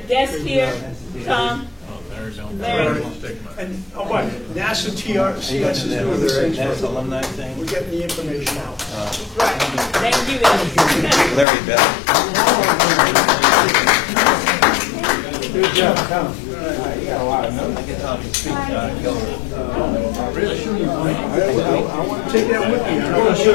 guest here, Tom, Larry. And what? NASA TRCS is doing the same NASA alumni thing. We're getting the information out. Right. Thank you, guys. Larry Bell. Good job, Tom. You got a lot of notes. I can tell you speak I want to take that with me. I'm going to show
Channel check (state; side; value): drops out; right; at 11.5 s